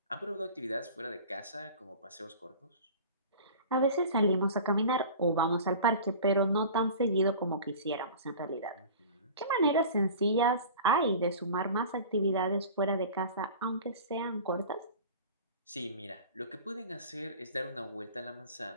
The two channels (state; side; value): inverted; both; correlation -0.39